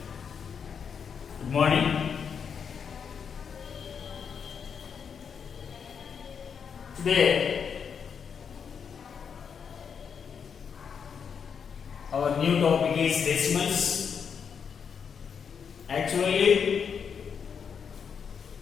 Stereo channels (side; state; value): right; quieter; 6.8 dB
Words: good morning. Today our new topic is decimals. Actually,